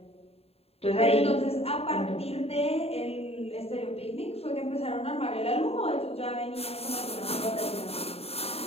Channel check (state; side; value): late; right; 0.29 ms